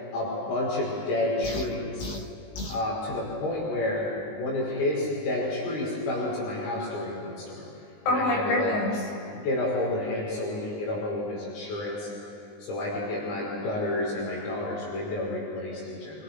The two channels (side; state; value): right; late; 19 ms